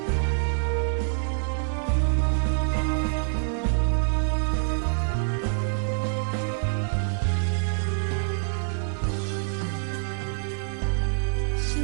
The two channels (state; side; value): silent; left; 61 dB below the other